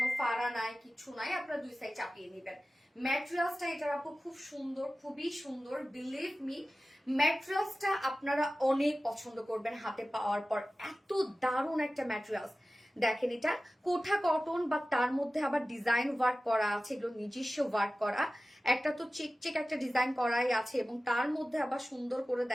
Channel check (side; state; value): both; normal; correlation 0.96